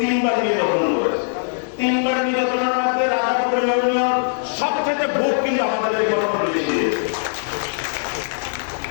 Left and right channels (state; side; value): silent; right; 65 dB below the other